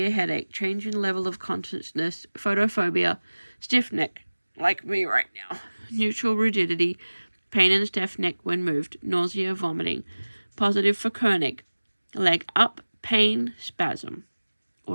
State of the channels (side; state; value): both; inverted; correlation -1.00